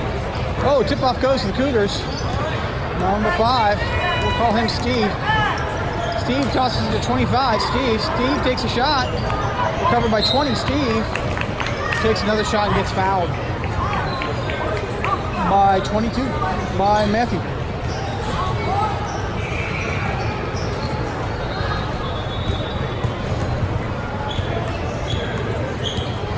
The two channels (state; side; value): identical; both; correlation 1.00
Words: Oh, tip-off goes to the Cougars. Number 5, we'll call him Steve. Steve tosses it to 25. Steve takes a shot. Recovered by 20. Steve takes another shot and gets fouled by 22 by Matthew.